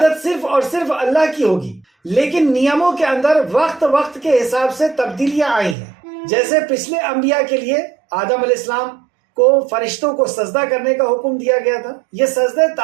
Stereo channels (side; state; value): left; drops out; at 5.8 s